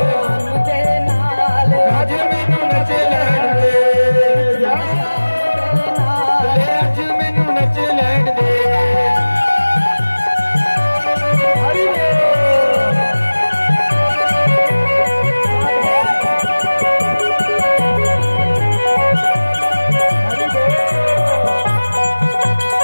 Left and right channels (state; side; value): inverted; both; correlation -1.00